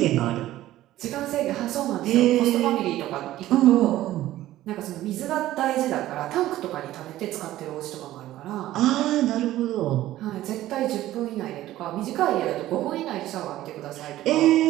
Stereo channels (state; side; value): quieter; left; 14.7 dB